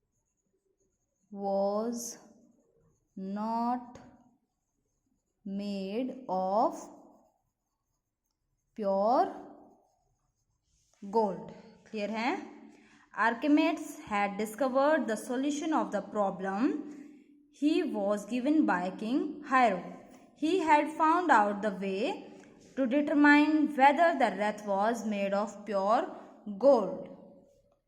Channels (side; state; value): both; identical; correlation 1.00